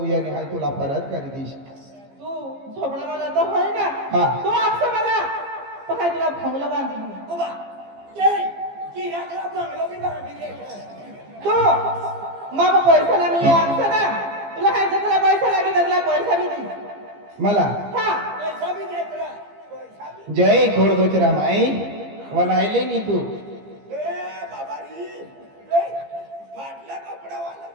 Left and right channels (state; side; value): late; left; 15 ms